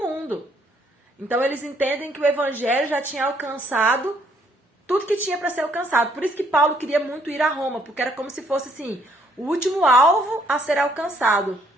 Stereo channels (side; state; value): both; normal; correlation 0.67